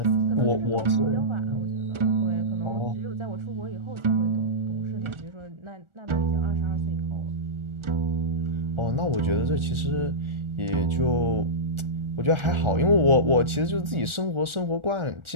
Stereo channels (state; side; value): late; left; 1.4 ms